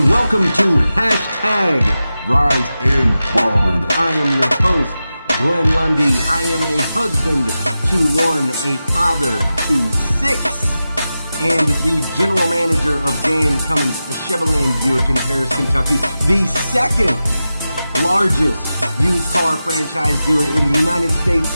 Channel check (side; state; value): both; inverted; correlation -0.93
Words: welcome to Hashtag Rise and Grind. I am your host, Glenn Lundy. I am a husband to one, a father to six, and the general manager of Dan Cummins Chevrolet Buick in Paris, Kentucky, the second largest used car franchise dealer in the United States